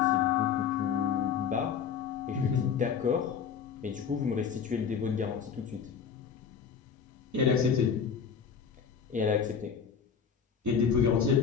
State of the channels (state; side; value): quieter; right; 6.9 dB